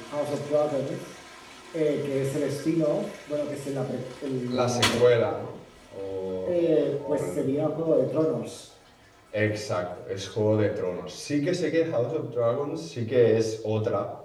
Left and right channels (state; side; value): identical; both; correlation 1.00